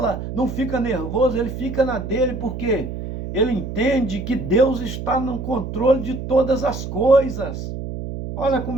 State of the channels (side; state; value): right; noise; hum, 6 dB below the sound